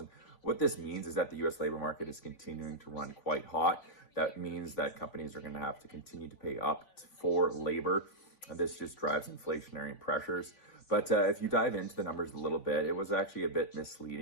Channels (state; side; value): late; right; 3.5 ms